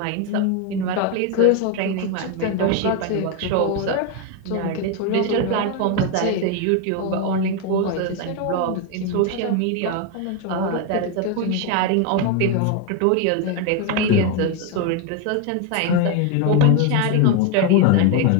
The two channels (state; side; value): different; both; correlation 0.02